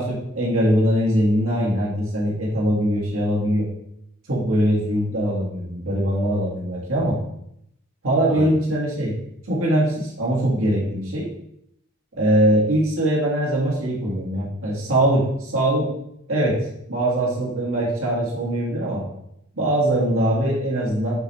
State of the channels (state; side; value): normal; both; correlation 0.53